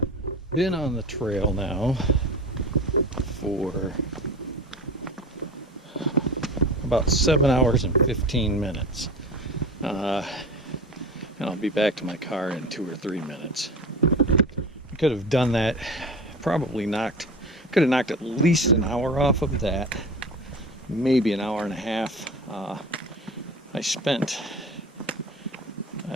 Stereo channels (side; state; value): both; normal; correlation 0.34